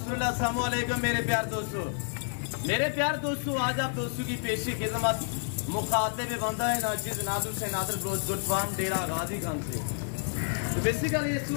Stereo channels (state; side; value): silent; right; digital silence